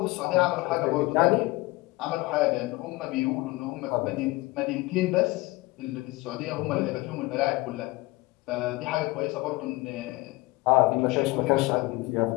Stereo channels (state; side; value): quieter; right; 21.3 dB